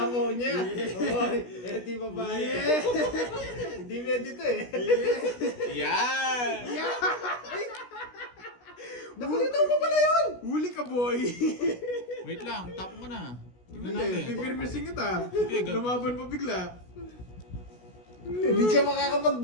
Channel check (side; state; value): right; late; 16 ms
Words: niya. Oy, di babae. Hindi pwede to eh. Yan! Nakulitaw mo pala yun! Huli ka, boy! Wait lang, tapo mo na. Tignan Hindi, natin. pipirmisin kita. Sige, Lumaban pa bigla. Hindi siya